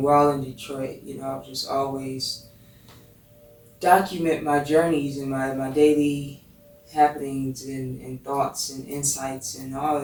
while in Detroit, I've just always document my journeys and my daily happenings and thoughts and insights and all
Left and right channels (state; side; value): identical; both; correlation 1.00